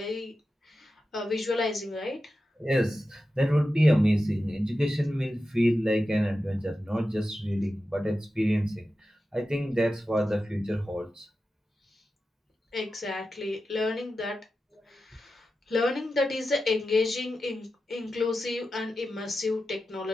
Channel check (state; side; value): normal; both; correlation 0.91